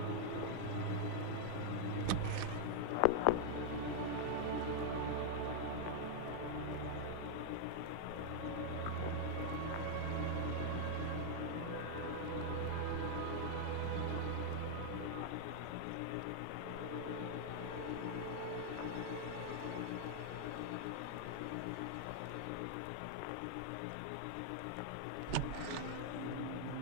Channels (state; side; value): different; both; correlation 0.00